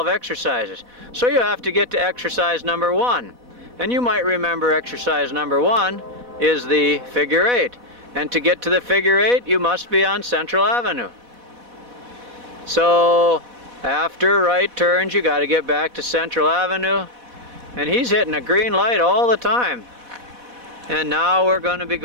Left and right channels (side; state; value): left; late; 4.1 ms